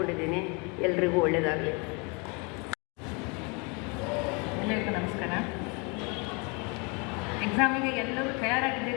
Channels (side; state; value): right; quieter; 31.5 dB